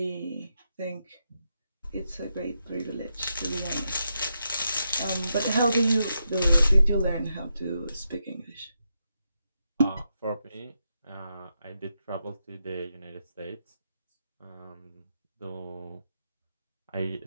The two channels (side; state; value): both; inverted; correlation -0.84